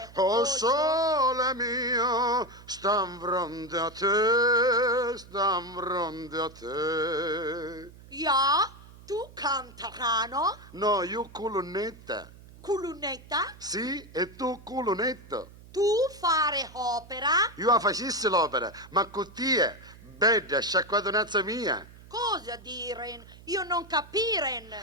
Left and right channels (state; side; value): noise; right; hum, 20 dB below the sound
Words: Oh sole mio, stam fronte a te. Ja, tu cantarano? No, io colonnetta. Culunetta? Sì, e tu colonnetto. Tu fare opera? Io la facessi l'opera, ma cottia, bella, sciacquatonazza mia. Cosa diren? Io non capiren.